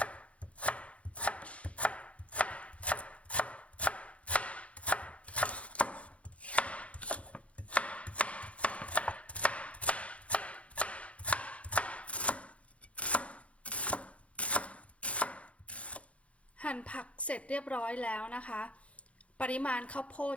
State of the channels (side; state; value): right; late; 0.063 ms